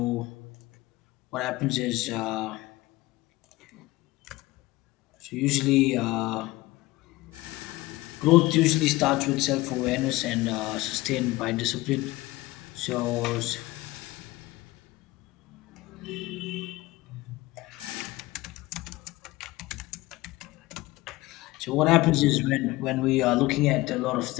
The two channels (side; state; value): right; quieter; 19.7 dB